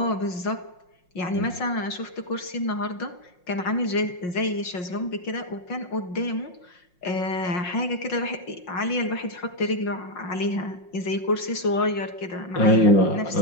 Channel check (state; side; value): late; right; 5.6 ms